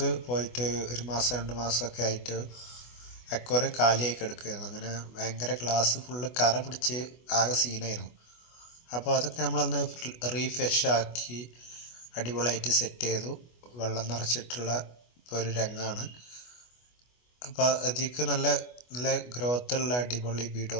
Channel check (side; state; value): right; late; 24 ms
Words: പോയിട്ട് ഒരു മാസം 2 മാസമൊക്കെ ആയിട്ട് അക്വേറിയം കാലിയായി കിടക്കുകയായിരുന്നു. അങ്ങനെ ഭയങ്കര ഗ്ലാസ് ഫുള്ള് കറ പിടിച്ച് ആകെ സീനായിരുന്നു. അപ്പോൾ അതൊക്കെ നമ്മളൊന്ന് റീഫ്രഷ് ആക്കി അടിപൊളിയായിട്ട് സെറ്റ് ചെയ്തു. വെള്ളം നിറച്ചിട്ടുള്ള ഇപ്പോൾ ഒരു രംഗമാണ്. അപ്പോൾ അതിലേക്ക് നല്ല നല്ല ഗ്രോത്തുള്ള അടിപൊളി ബീഡോ